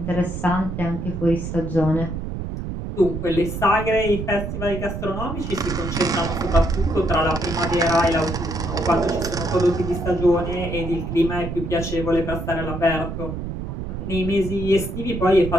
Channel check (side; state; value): right; noise; rumble, 6 dB below the sound